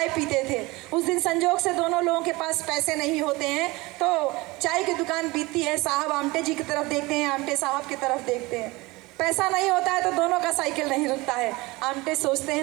पीते थे। उस दिन संजोग से दोनों लोगों के पास पैसे नहीं होते हैं, तो चाय की दुकान बीतती है। साहब आमटे जी की तरफ देखते हैं, आमटे साहब की तरफ देखते हैं। पैसा नहीं होता है तो दोनों का साइकिल नहीं रुकता है। आमटे सोचते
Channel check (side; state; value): left; quieter; 22.6 dB